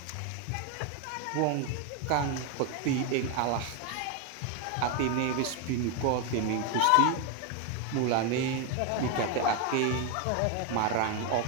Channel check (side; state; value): both; different; correlation 0.01